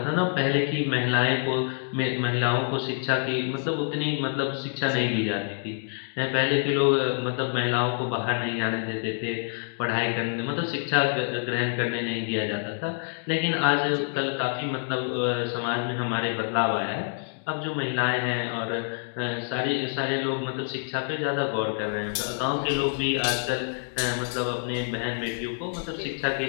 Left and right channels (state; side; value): silent; right; digital silence